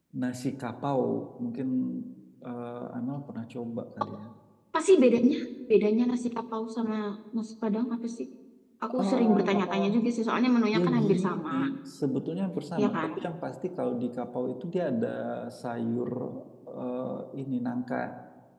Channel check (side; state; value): both; identical; correlation 1.00